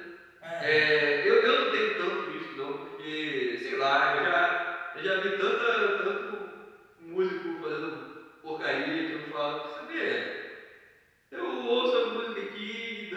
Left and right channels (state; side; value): identical; both; correlation 1.00